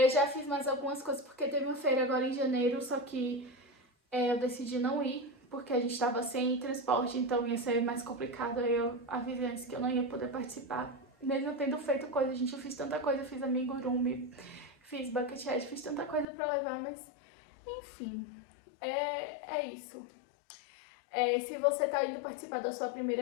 já fiz mais algumas coisas porque teve uma feira agora em janeiro, só que eu decidi não ir, porque a gente tava sem transporte, então ia ser mais complicado. Aí eu avisei antes que eu não ia poder participar. Mesmo tendo feito coisa, gente, eu fiz tanta coisa, eu fiz amigurumi, fiz bucket hat, fiz tanta coisa pra levar, mas enfim, é isso. Se você tá indo participar da sua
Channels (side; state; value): right; drops out; at 16.2 s